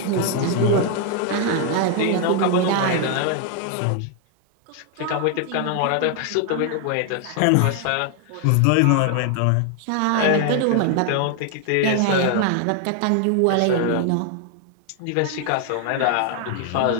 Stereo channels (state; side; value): different; both; correlation 0.00